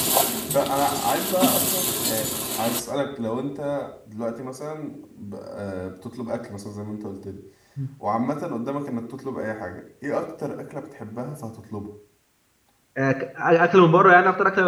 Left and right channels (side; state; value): both; identical; correlation 1.00